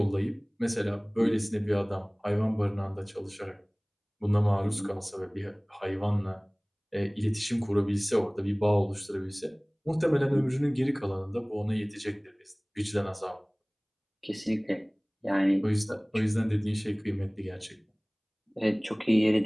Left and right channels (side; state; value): both; identical; correlation 1.00